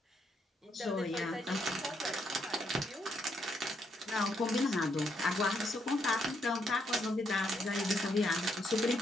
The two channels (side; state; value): both; normal; correlation 0.75